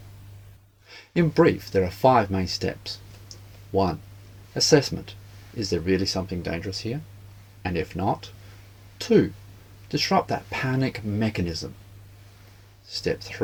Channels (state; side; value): identical; both; correlation 1.00